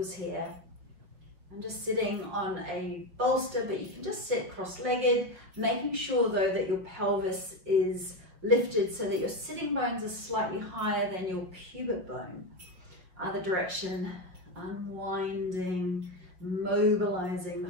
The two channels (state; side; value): late; left; 5.3 ms